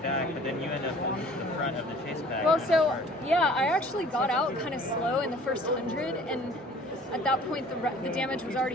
but then you end up in the front of the chase pack. Well, so yeah, I actually got out kind of slow in the first 100, and at that point the damage was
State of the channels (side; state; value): both; normal; correlation 0.50